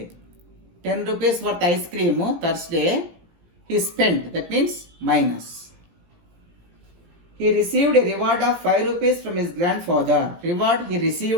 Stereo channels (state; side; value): late; left; 17 ms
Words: 10 rupees worth ice cream Thursday he spent. That means minus. he received a reward of 5 rupees from his grandfather. Reward he